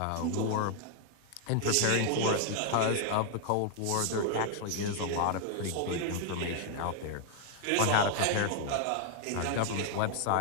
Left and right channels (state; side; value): different; both; correlation 0.00